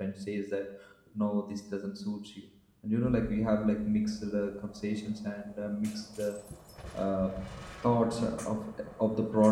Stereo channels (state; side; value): identical; both; correlation 1.00